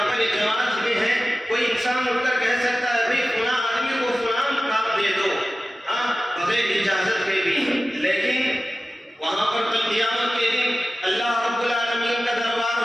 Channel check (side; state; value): both; normal; correlation 0.96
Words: پر ایک جماعت میں ہے، کوئی انسان اٹھ کر کہہ سکتا ہے بھائی فلاں آدمی کو فلاں کام دے دو، بغیر اجازت کے بھی، لیکن وہاں پر کل قیامت کے دن اللہ رب العالمین کا دربار